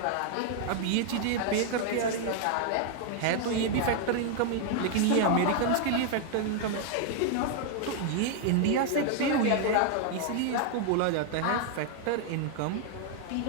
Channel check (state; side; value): different; both; correlation 0.00